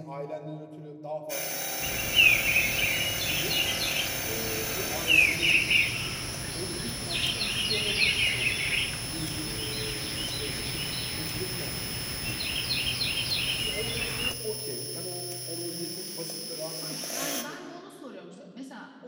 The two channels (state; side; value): identical; both; correlation 1.00